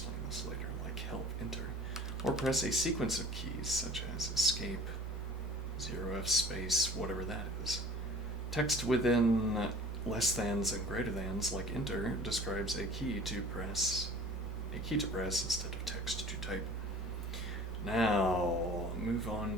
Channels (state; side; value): normal; both; correlation 0.46